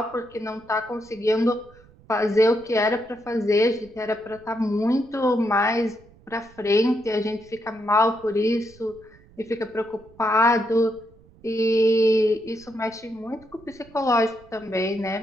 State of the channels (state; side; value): noise; right; rumble, 26 dB below the sound